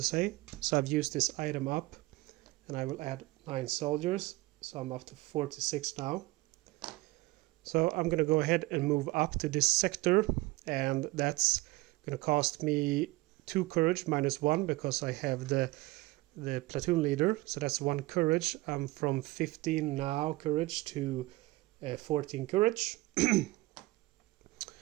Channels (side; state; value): left; quieter; 20.5 dB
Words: say. So I've used this item up, and I will add 9 soldiers. So I'm up to 46 now. So I'm going to go ahead and move up to this sector, and that's going to cost me 2 courage minus 1 because I have the platoon leader. So that's 1 courage. I'm from 15 now courage to 14 courage.